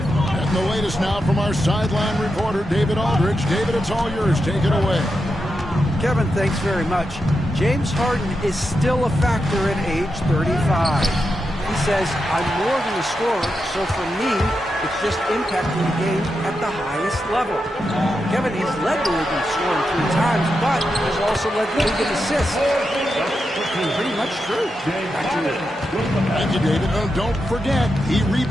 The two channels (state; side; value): normal; both; correlation 0.87